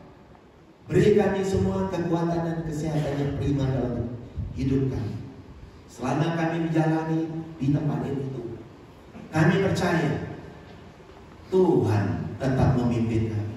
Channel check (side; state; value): both; identical; correlation 1.00